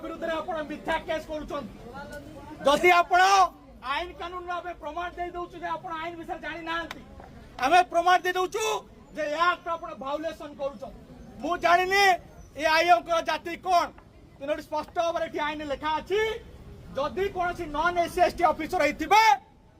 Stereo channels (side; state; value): both; identical; correlation 1.00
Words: विरुद्ध रे आपण मिथ्या केस करूछन जदि आपण आईन कानून रे प्रमाण दे दउछु जे आपण आईन विषय जानि नांती हमें प्रमाण दे दउछु जे या आपण भायोलेशन करूछन मु जानिनी ए आईएम को जाति कोन तेनोटी स्पष्ट भाव में आईन लिखा अच्छी जदि कौन नन एससी एसटी ऑफिसर होइथिबे